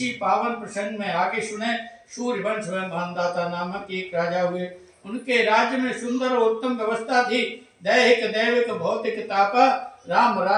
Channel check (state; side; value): identical; both; correlation 1.00